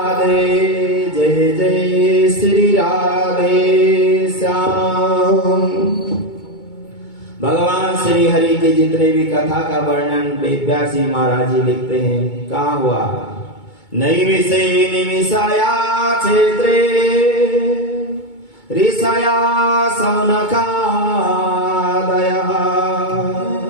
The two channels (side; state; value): right; late; 2.2 ms